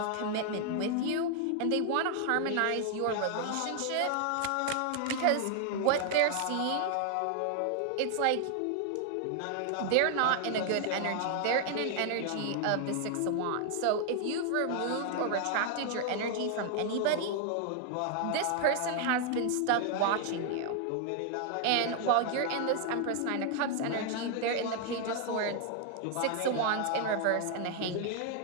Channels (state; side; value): different; both; correlation 0.00